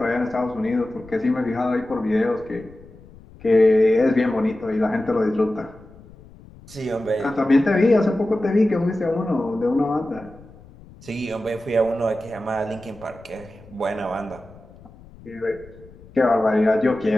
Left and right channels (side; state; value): left; noise; rumble, 22 dB below the sound